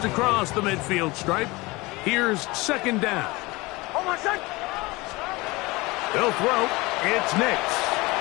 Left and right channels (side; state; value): right; quieter; 22.7 dB